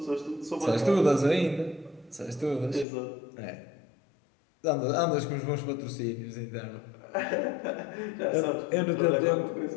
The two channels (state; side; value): drops out; right; at 2.9 s